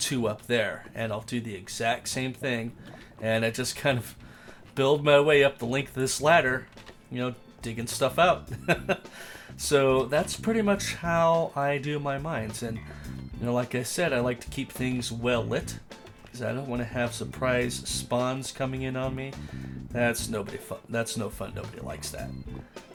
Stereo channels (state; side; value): identical; both; correlation 1.00